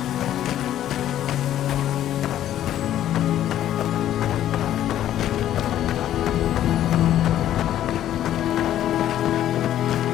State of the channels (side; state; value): right; quieter; 11.9 dB